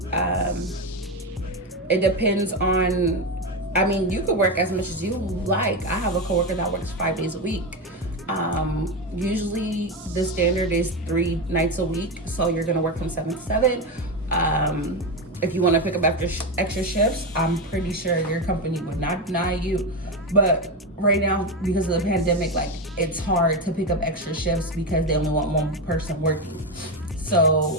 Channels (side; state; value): both; normal; correlation 0.14